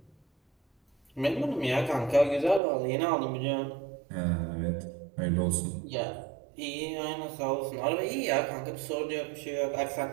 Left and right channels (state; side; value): drops out; left; at 2.6 s